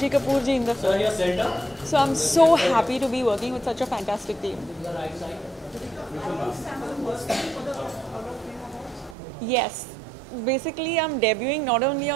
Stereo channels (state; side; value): drops out; left; at 9.2 s